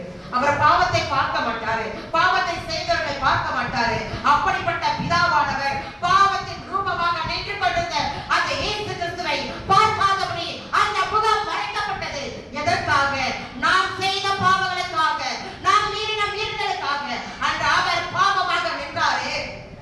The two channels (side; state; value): both; identical; correlation 1.00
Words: அவர் பாவத்தை பார்க்க மாட்டாரு, பாவத்தை செய்தவர்களை பார்க்க மாட்டாரு. அப்படிப்பட்ட பிதாவானவர் பாவத்தின் ரூபமாக நின்று கொண்டிருந்த அந்த இயேசு கிறிஸ்துவை பார்க்காதபடி அந்த முகம் மறைக்கப்பட்டது. எதற்காக? நாம் செய்த பாவங்களுக்காக, நாம் மீறின மீறல்களுக்காக அந்த அவர் பாவமாக நின்றாரே.